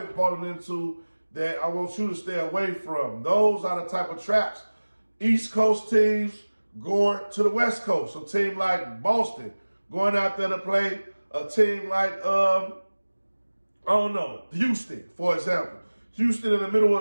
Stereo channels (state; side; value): inverted; both; correlation -1.00